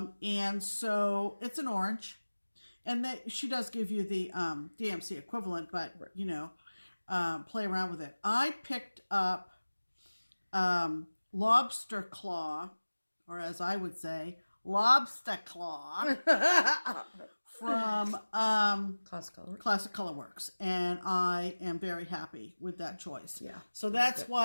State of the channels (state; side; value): inverted; both; correlation -1.00